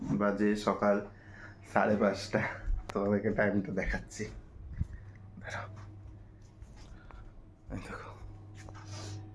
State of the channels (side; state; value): both; identical; correlation 1.00